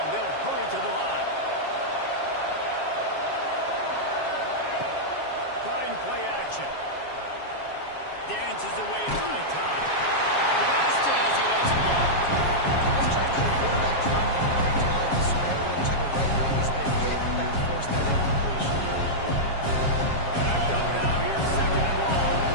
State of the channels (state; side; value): late; right; 7.3 ms